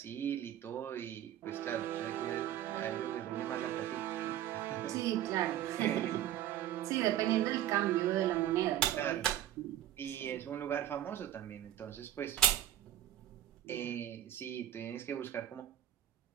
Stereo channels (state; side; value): quieter; left; 12.3 dB